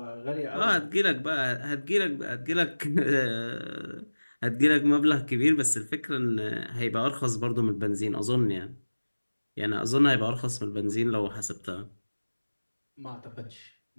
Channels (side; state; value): both; inverted; correlation -1.00